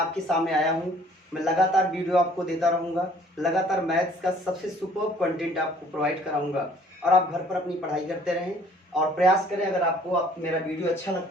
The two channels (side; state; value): both; normal; correlation 0.57